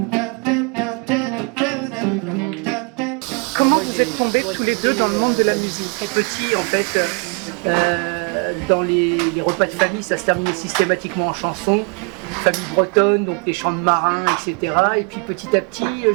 Comment vous êtes tombés tous les deux dans le monde de la musique? Très petit en fait, dans les repas de famille, ça se terminait systématiquement en chansons, famille bretonne, donc des chants de marins, etc. Et puis petit à petit,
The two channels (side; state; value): left; quieter; 35.7 dB